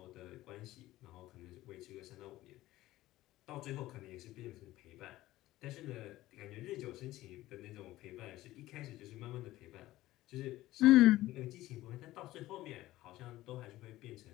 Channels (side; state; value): right; quieter; 16.3 dB